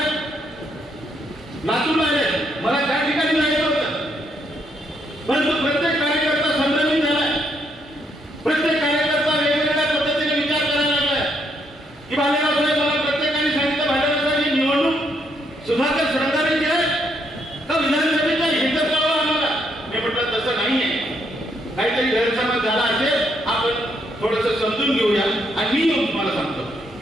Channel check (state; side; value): normal; both; correlation 0.74